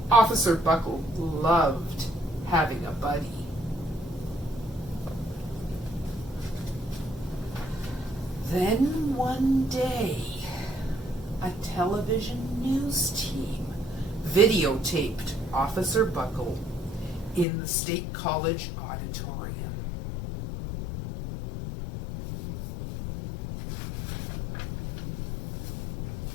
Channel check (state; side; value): drops out; right; at 17.4 s